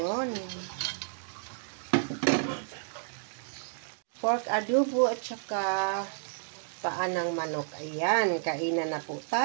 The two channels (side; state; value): left; silent; digital silence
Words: Pork adobo at saka paa ng manok. Ayan, kainan na po